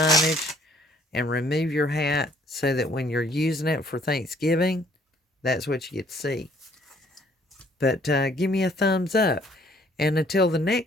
and remove your hat so that when you're using it for Thanksgiving, that's what you get to see. But give me a thumbs up. And until the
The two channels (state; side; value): normal; both; correlation 0.62